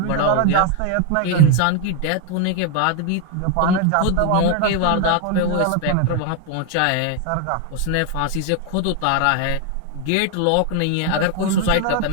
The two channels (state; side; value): different; both; correlation 0.01